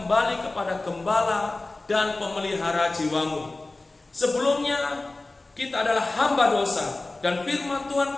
kepada gembala dan pemelihara jiwamu. Sebelumnya kita adalah hamba dosa, dan firman Tuhan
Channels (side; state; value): right; quieter; 3.1 dB